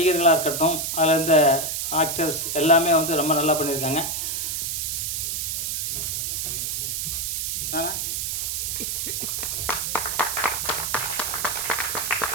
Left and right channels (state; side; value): noise; right; hiss, 1 dB below the sound